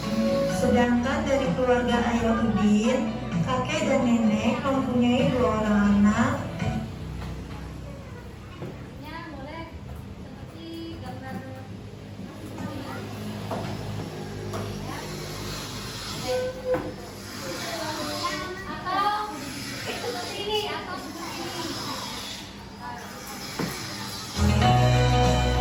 Sedangkan dari keluarga ayah Udin, kakek dan nenek mempunyai 2 orang anak. Ya, boleh seperti gambar atau seperti ini atau seperti ini.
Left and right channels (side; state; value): both; identical; correlation 1.00